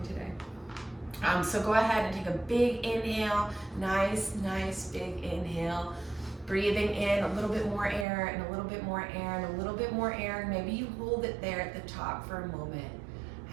today. So go ahead and take a big inhale, nice big inhale. Breathing in a little bit more air and a little bit more air and a little bit more air. Maybe you hold it there at the top for a moment,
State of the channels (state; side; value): drops out; left; at 8.1 s